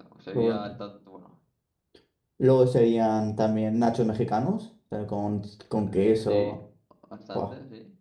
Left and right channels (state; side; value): identical; both; correlation 1.00